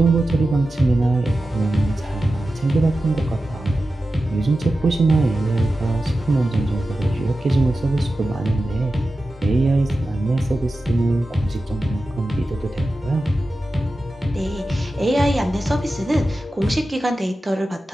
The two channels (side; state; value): both; normal; correlation 0.93